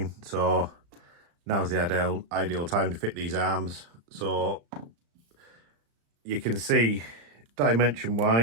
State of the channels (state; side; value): late; left; 35 ms